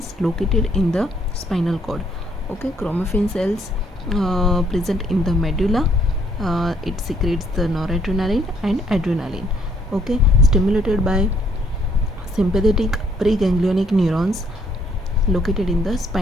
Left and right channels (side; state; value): both; normal; correlation 0.67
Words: located in the spinal cord. Okay, chromaffin cells present in the medulla, it secretes the noradrenaline and adrenaline. Okay, stimulated by sympathetic preganglionic neurons located in the